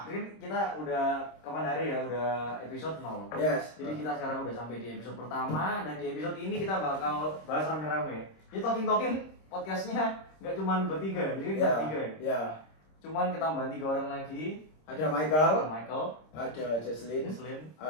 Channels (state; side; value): late; right; 26 ms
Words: Jadi kita udah kapan hari ya, udah episode 0. Yes. Jadi kita sekarang udah sampai di episode pertama, dan di episode ini kita bakal bahas rame-rame. Jadi talking podcastnya nggak cuma bertiga, jadi kita bertiga ya. Ya. Cuman ketambahan 3 orang lagi. Ada Michael, ada Jesslyn,